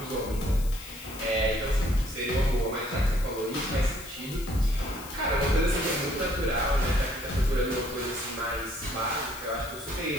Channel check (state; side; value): noise; left; hiss, 15 dB below the sound